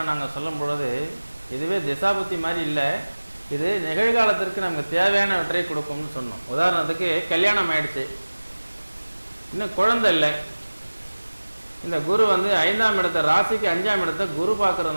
நாங்கள் சொல்லும் பொழுது இதுவே திசாபுத்தி மாதிரி இல்லை, இது நிகழ்காலத்திற்கு நமக்கு தேவையானவற்றை கொடுக்கும்னு சொன்னோம். உதாரணத்துக்கு கல்யாணம் ஆயிடுச்சு, இன்னும் குழந்தை இல்லை, இந்த குரு வந்து 5ஆம் இடத்தை, ராசிக்கு 5ஆம் இடத்தை குரு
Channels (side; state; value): both; inverted; correlation -1.00